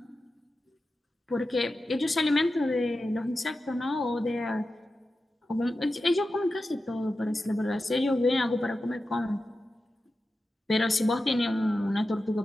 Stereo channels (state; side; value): normal; both; correlation 0.92